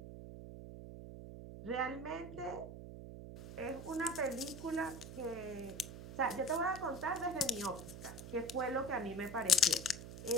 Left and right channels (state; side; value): noise; right; hum, 11 dB below the sound